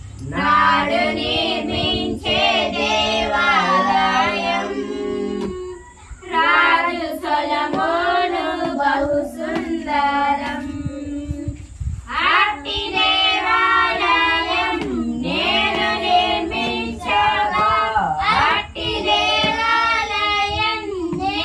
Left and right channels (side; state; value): both; identical; correlation 1.00